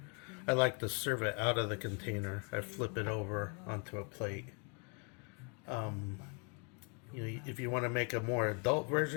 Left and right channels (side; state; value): right; quieter; 36.5 dB